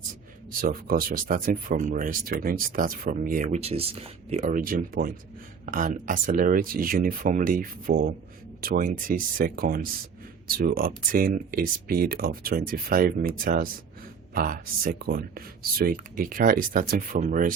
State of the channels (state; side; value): quieter; left; 6.3 dB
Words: So of course we're starting from rest. We're going to start from here, which is the origin point, and accelerate uniformly for 20 seconds to obtain a speed of 25 meters per second. So a car is starting from